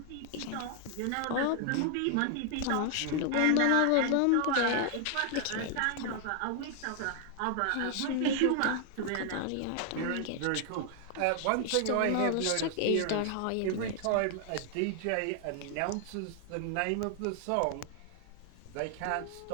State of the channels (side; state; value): both; different; correlation 0.00